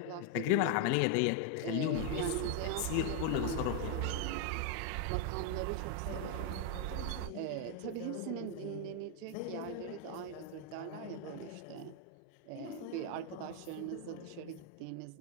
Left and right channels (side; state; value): both; different; correlation 0.01